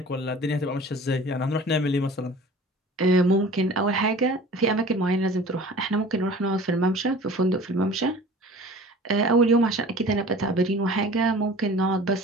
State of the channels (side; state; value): both; normal; correlation 0.43